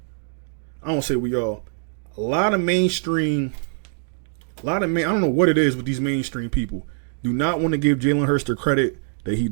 don't say we all, a lot of mainstream, I don't know what it is with these mainstream people, do not want to give Jalen Hurts the credit that he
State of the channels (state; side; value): silent; left; digital silence